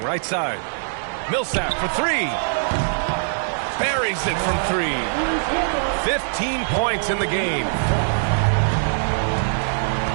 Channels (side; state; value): left; silent; digital silence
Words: right side. Millsap for 3. Buries it from 3. 15 points in the game.